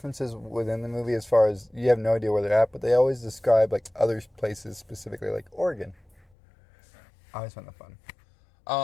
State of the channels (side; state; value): right; drops out; at 6.2 s